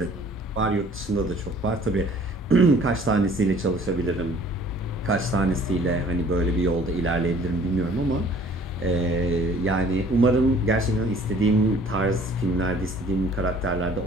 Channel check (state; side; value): normal; both; correlation 0.54